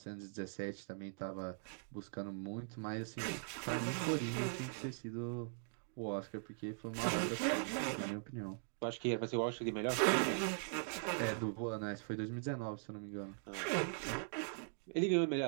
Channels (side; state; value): left; silent; digital silence